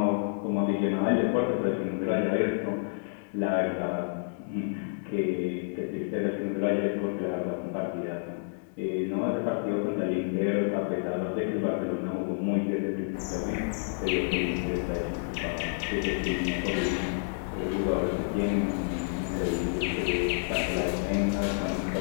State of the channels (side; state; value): right; silent; digital silence